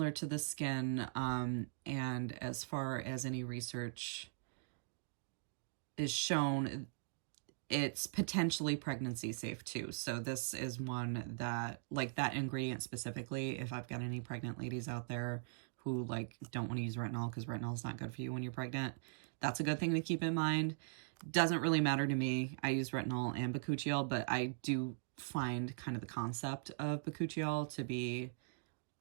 to the skin. And as far as any research is shown, it's potentially pregnancy safe too. So this is one that, like that ingredient specifically, if I've got any pregnant ladies out there who like don't want to use retinol because retinol is not good for you when you're pregnant, that's a good thing to keep in mind. Doesn't really matter to me. I use retinol and bakuchiol, but I do find kind of the concept of bakuchiol to be,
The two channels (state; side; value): silent; left; digital silence